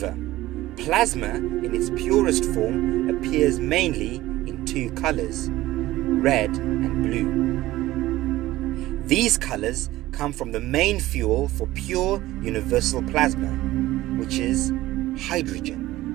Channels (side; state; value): left; quieter; 16.6 dB